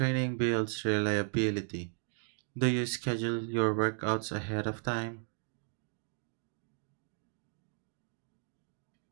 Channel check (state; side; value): silent; left; 54 dB below the other